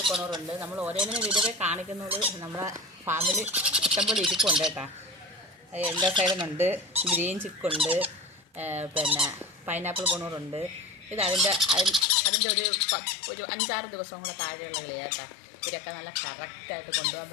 കൊണൂറുണ്ട്. നമ്മൾ ഓരോന്നിനും വീഡിയോ കാണിക്കുന്നത് നമ്മളെ ഫാമിൽ ഇഷ്ടംപോലെ ഇരിപ്പുണ്ട് കേട്ടോ. എല്ലാ സൈഡിനുണ്ട്. ഗ്രീൻ ചിക്കുണ്ട്, പിന്നെ പൈനാപ്പിൾ കൊണൂറുണ്ട്. ഇത് അതിൻ്റെ ഒരു 5-6 ദിവസം കൂടെ താഴെയുള്ള കിളിയാണ് കേട്ടോ. ഇവരൊക്കെ നല്ല കറക്റ്റായിട്ട് കൊണ്ടുപോകാൻ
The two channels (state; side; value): drops out; right; at 12.1 s